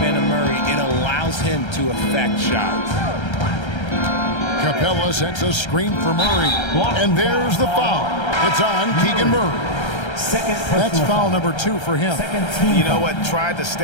of Murray, it allows him to affect shots. Capella sets a screen for Murray, and there's the foul. It's on Keegan Murray. That's foul number 2 for him. You know what? Tried to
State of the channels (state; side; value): late; right; 1.3 ms